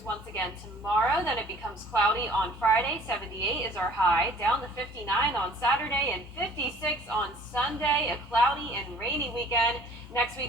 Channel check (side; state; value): both; normal; correlation 0.52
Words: once again tomorrow. Then it becomes cloudy on Friday. 78 is our high. Down to 59 on Saturday and 56 on Sunday. A cloudy and rainy weekend. Next